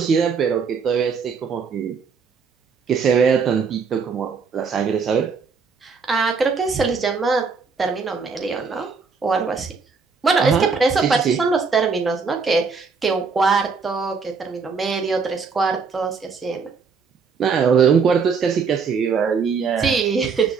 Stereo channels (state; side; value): quieter; left; 5.3 dB